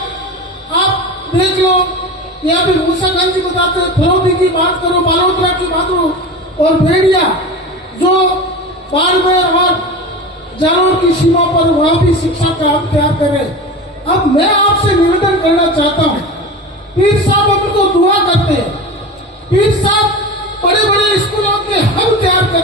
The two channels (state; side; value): normal; both; correlation 0.29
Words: आप देख लो, यहाँ भी मूसा खान जी बताते हैं, फरौदी की बात करो, बालोतरा की बात करो, और भेड़िया जो बाड़मेर और जालौर की सीमा पर, वहां भी शिक्षा का हब तैयार करे। अब मैं आपसे निवेदन करना चाहता हूँ, पीर साहब उनको दुआ करते हैं, पीर साहब बड़े बड़े स्कूलों के हब तैयार